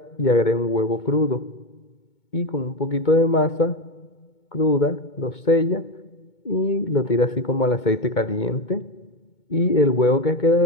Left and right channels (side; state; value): right; late; 2.2 ms